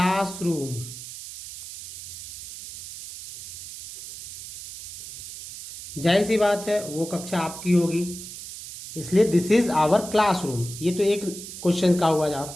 जाहिर सी बात है वो कक्षा आपकी होगी, इसलिए दिस इज आवर क्लासरूम। ये तो एक क्वेश्चन का हुआ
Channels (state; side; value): noise; right; hiss, 12 dB below the sound